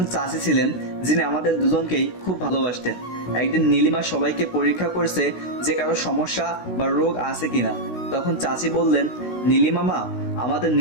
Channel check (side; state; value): right; late; 16 ms